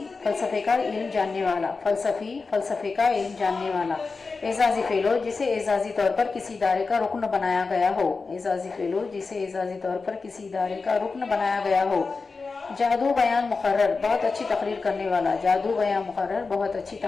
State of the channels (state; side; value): quieter; right; 4.3 dB